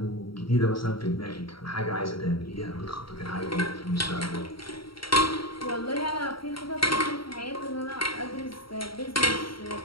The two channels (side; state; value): right; late; 0.74 ms